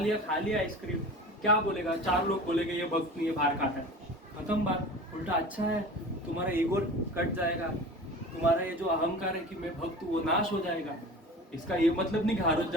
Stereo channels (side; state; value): both; normal; correlation 0.37